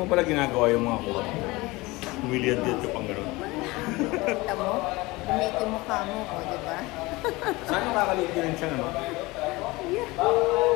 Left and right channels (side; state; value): right; quieter; 22.0 dB